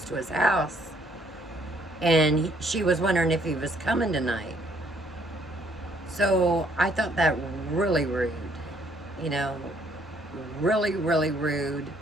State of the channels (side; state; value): both; normal; correlation 0.66